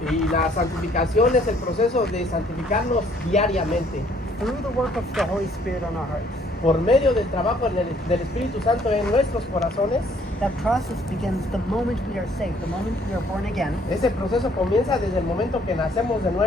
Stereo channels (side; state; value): both; normal; correlation 0.63